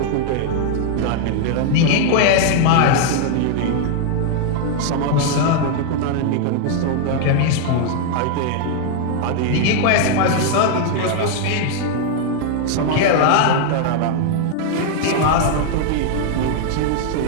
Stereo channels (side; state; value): both; different; correlation 0.00